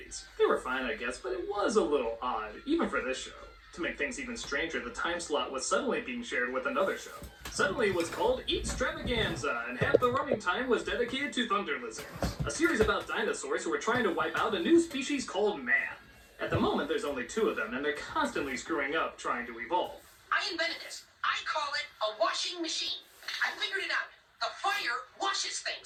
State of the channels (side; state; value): both; identical; correlation 1.00